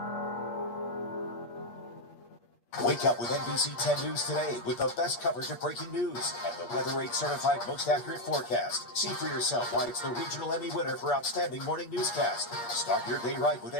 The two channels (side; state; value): right; late; 8.3 ms